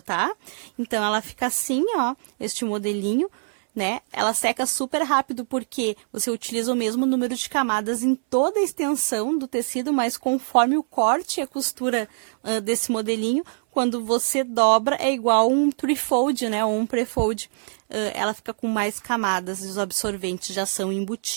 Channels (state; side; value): silent; left; 63 dB below the other